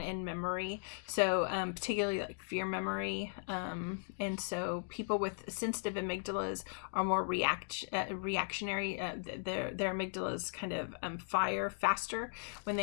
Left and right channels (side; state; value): right; silent; digital silence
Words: and memory. So particularly like fear memory. And so people with sensitive amygdalas are more reactionary. Their amygdalas kind of fire faster when